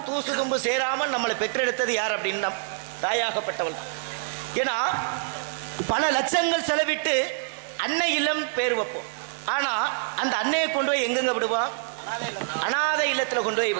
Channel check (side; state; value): left; silent; 61 dB below the other